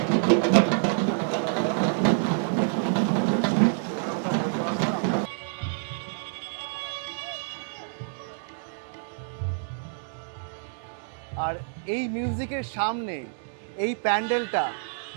আর এই মিউজিকের সামনে এই প্যান্ডেলটা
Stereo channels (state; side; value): silent; left; digital silence